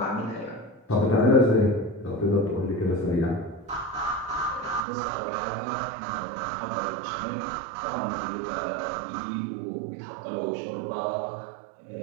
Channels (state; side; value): drops out; left; at 4.8 s